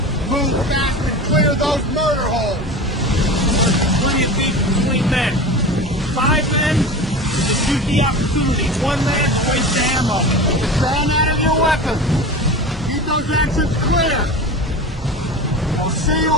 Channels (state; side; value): normal; both; correlation 0.30